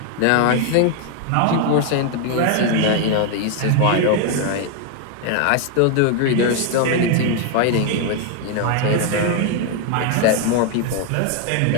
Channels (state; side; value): different; both; correlation 0.01